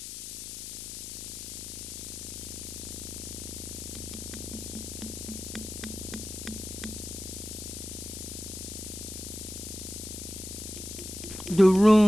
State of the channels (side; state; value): left; noise; hiss, 8 dB below the sound